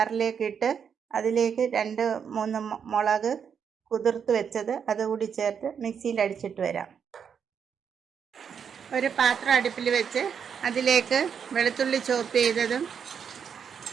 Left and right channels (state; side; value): quieter; left; 7.2 dB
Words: ഇട്ട് അതിലേക്ക് 2-3 മുളക് കുതിർത്ത് വെച്ചത് അതുകൂടി ചേർത്ത് മിക്സിയിൽ അടിച്ചിട്ട് വരാം. ഒരു പാത്രം അടുപ്പിൽ വെച്ച് അതിലേക്ക് വെളുത്തുള്ളി ചോപ്പ് ചെയ്തതും